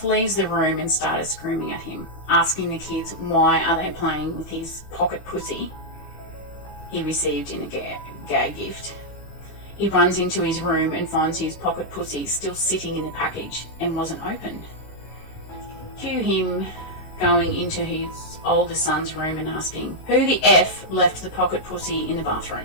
leaves the room and started screaming at him, asking the kids why are they playing with his pocket pussy he received in a gag gift. He runs into his room and finds his pocket pussy still sitting in the package and wasn't opened. Cue him going into his older son's room and asking, "Who the F left the pocket pussy in the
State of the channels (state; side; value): late; right; 16 ms